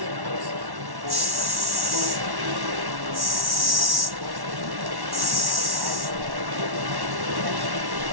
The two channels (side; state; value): left; late; 1.1 ms